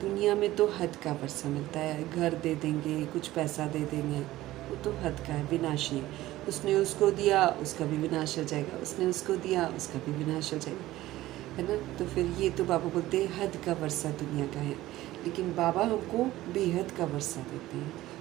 में तो हद का वर्षा मिलता है, घर दे देंगे, कुछ पैसा दे देंगे, वो तो हद का है, विनाशी है। उसने उसको दिया, उसका भी विनाश हो जाएगा, उसने उसको दिया, उसका भी विनाश हो जाएगा, है ना। तो फिर ये तो बाबा बोलते हैं हद का वर्षा दुनिया का है, लेकिन बाबा हमको बेहद का वर्षा देते हैं।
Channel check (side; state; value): left; quieter; 16.1 dB